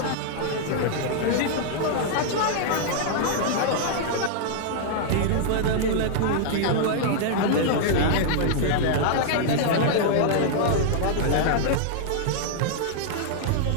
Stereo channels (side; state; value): both; different; correlation -0.01